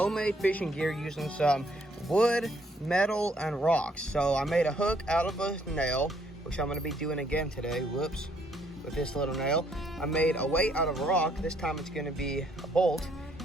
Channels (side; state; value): both; normal; correlation 0.68